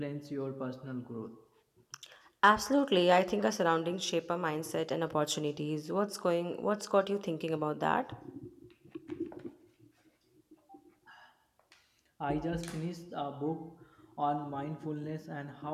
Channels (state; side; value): identical; both; correlation 1.00